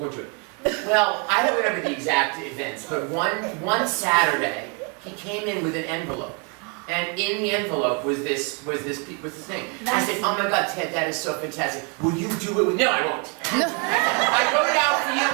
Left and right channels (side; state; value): left; quieter; 34.2 dB